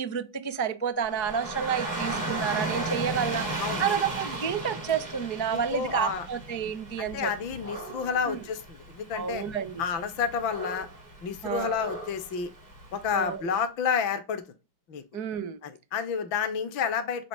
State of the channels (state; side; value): late; right; 5.9 ms